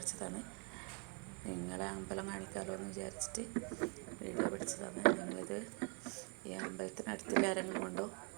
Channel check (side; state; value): left; quieter; 33.1 dB